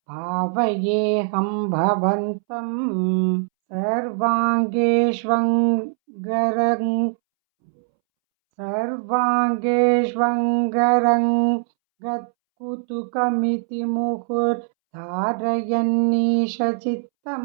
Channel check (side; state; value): left; silent; 65 dB below the other